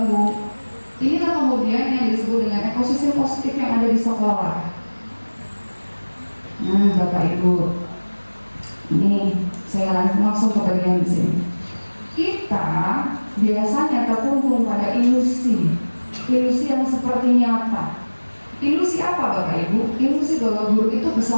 Inilah kemudian yang disebut dengan ekosistem positif yang ada di sekolah. Nah, Bapak Ibu, ini saya langsung ke bagian di sini. Kita biasanya terkungkung pada ilusi yang seperti nyata. Ilusi apa Bapak Ibu? Ilusi bahwa guru itu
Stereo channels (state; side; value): inverted; both; correlation -1.00